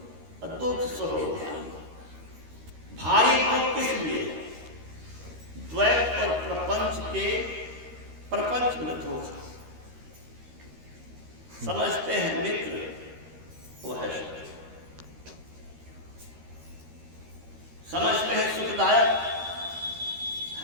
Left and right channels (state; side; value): late; left; 13 ms